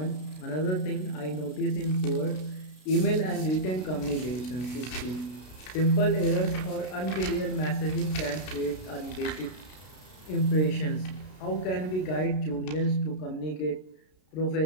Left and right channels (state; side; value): late; right; 32 ms